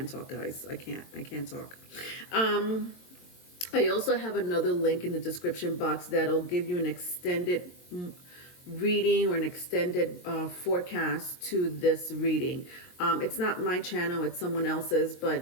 talk, guys. I can't talk. I also have another link in the description box that'll give you an extended reading or an extended forecast to this reading. It's not my channel, it's someone else's,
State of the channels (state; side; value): late; right; 22 ms